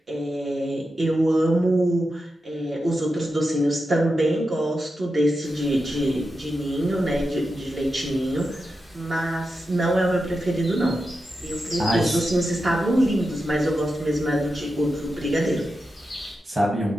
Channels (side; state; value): both; normal; correlation 0.89